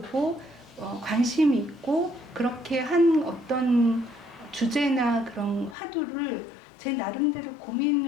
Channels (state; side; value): drops out; right; at 5.8 s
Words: 관심이 있고 그렇게 한 어떤 주제나 그런 화두를 제 나름대로